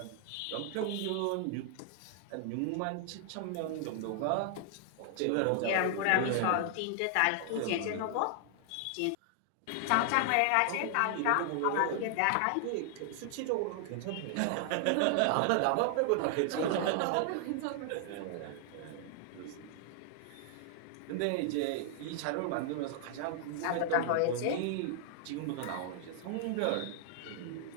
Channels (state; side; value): different; both; correlation 0.00